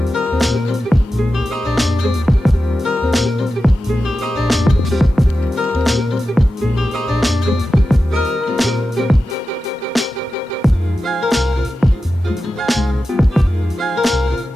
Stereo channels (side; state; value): both; normal; correlation 0.92